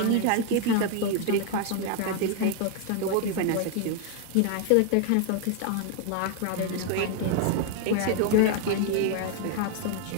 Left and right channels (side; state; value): both; different; correlation 0.00